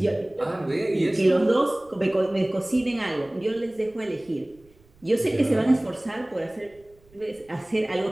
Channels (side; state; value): right; noise; rumble, 30 dB below the sound